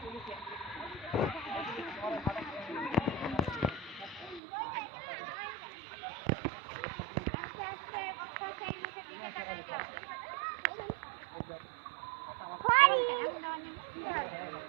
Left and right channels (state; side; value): drops out; left; at 4.4 s